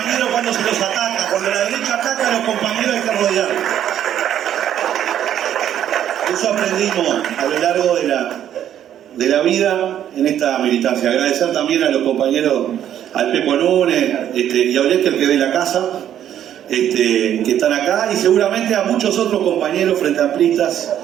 cuando se los ataca. Cuando la derecha ataca a los compañeros hay que rodearlos. Eso aprendimos a lo largo de la vida en esta militancia. Agradecer también a los compañeros, al Pepo Núñez y a Olesker, que de la casa, que están acá, y seguramente a muchos otros compañeros frenteamplistas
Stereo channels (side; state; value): left; quieter; 10.5 dB